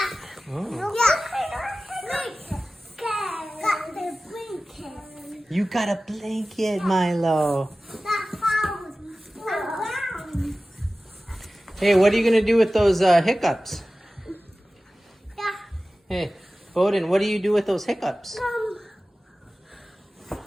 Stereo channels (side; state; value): both; normal; correlation 0.96